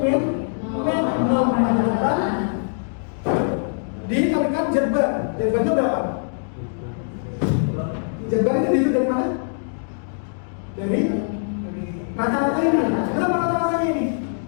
min 0,8 dikalikan Z bar. Z barnya berapa? Z bar ini dihitung dari mana? Dari rata-rata ini. Berapa rata-ratanya ini?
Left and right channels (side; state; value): right; silent; digital silence